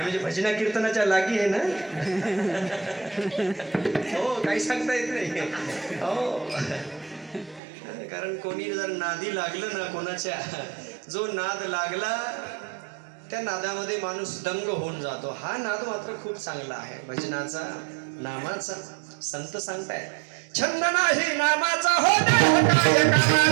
भजना कीर्तनाच्या लागी आहे ना? हो, काही सांगता येत नाही. हो, कारण कोणी जर नादी लागलं ना कोणाच्या, जो नाद लागला त्या नादामध्ये माणूस दंग होऊन जातो. हा नाद मात्र खूप चांगला आहे भजनाचा, नामाचा. संत सांगतायत छंद नाही नामाचा हो देह काय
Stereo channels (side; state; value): left; drops out; at 7.6 s